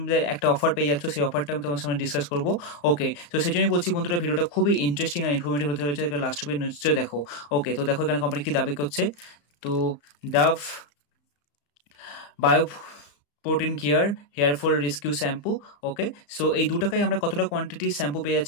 একটা অফার পেয়ে যাচ্ছ। সেই অফারটা আমি তোমার সামনে ডিসকাস করবো। ওকে, তো সেই জন্যই বলছি বন্ধুরা, ভিডিওটা খুবই ইন্টারেস্টিং আর ইনফরমেটিভ হতে হয়েছে, লাস্ট অব্দি নিশ্চয়ই দেখো। ওকে, তো দেখো এখানে কোম্পানি কি দাবি করছে। তো Dove bio protein care hair fall rescue shampoo. Okay, so এই 2 টাকায় আমরা কতটা কোয়ান্টিটি শ্যাম্পু পেয়ে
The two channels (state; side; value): late; right; 34 ms